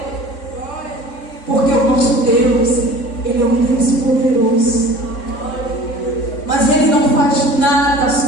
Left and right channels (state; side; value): late; right; 3.7 ms